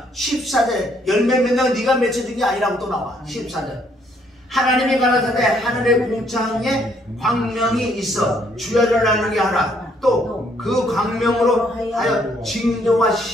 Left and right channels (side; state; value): both; normal; correlation 0.68